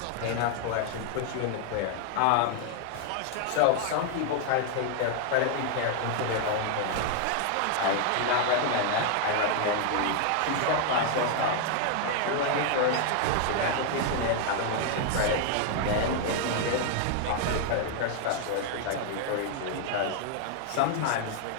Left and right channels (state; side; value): different; both; correlation 0.00